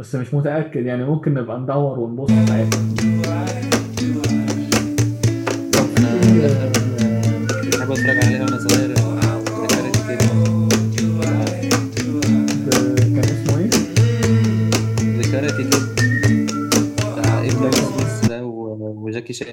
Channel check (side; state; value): both; identical; correlation 1.00